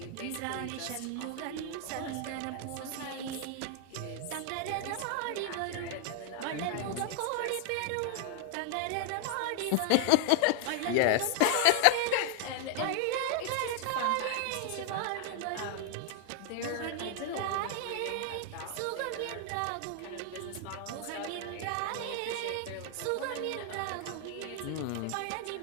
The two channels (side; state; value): both; different; correlation 0.00